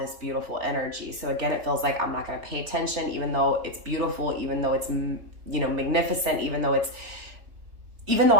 beautiful energy. So again, it feels like I'm not going to pay attention, even though it's beautiful, even though it's, magnificent, even though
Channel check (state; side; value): late; left; 3.3 ms